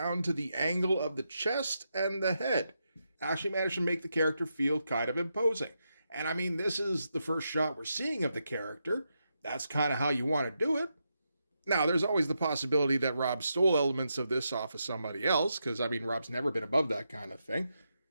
to the angle of the chest and the head. Actually managed to make the character feel kind of imposing. And this is the first shot we're seeing of the character. That's kind of how you want to do it. Now, there's always the possibility that Rob stole elements of this off of somebody else, because, Rob's never been above that kind of thing.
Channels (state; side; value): inverted; both; correlation -0.84